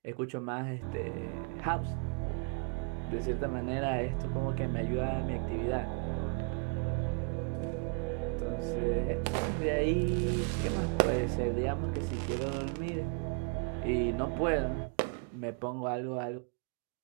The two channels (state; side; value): quieter; left; 34.8 dB